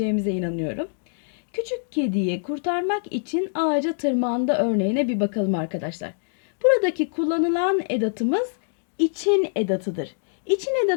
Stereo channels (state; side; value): silent; right; digital silence